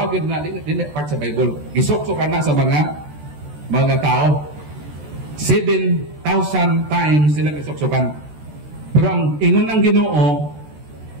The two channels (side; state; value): left; late; 14 ms